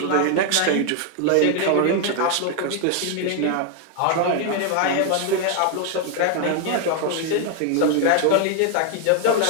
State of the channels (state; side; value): different; both; correlation 0.00